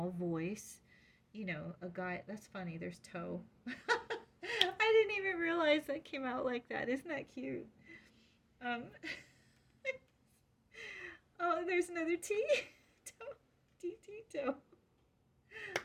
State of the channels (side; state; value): both; identical; correlation 1.00